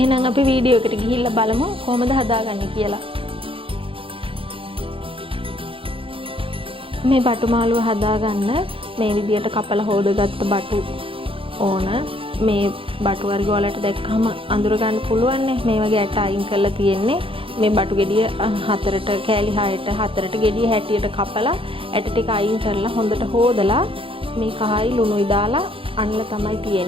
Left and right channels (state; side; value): late; left; 0.26 ms